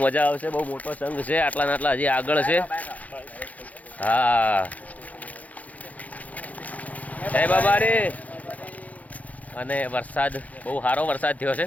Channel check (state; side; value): late; right; 0.074 ms